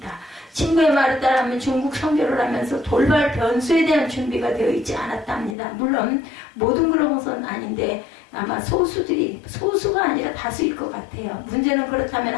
친구의 말을 따르면 중국 선교를 하면서 돌발 변수에 대한 준비가 되어 있지 않았답니다. 물론 모든 그런 것은 아닌데 아마 소수가 아니라 다수일 것 같아요. 문제는 그렇다면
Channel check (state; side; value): drops out; right; at 5.6 s